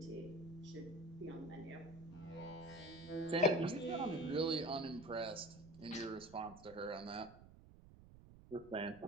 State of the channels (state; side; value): noise; right; rumble, 19 dB below the sound